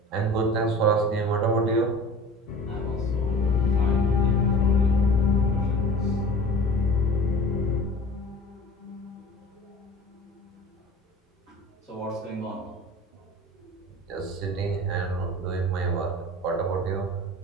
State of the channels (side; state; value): both; normal; correlation 0.40